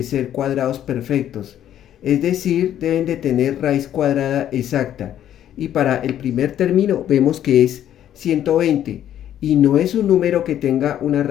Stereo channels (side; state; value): right; quieter; 11.0 dB